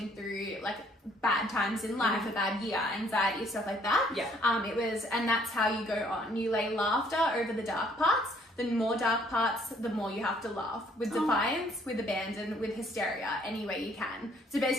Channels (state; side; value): normal; both; correlation 0.63